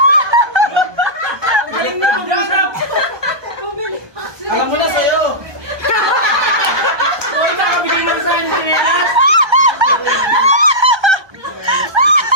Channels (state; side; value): late; left; 1.2 ms